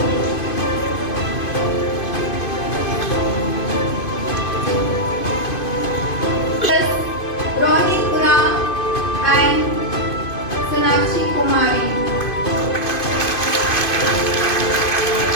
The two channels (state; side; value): late; right; 2.5 ms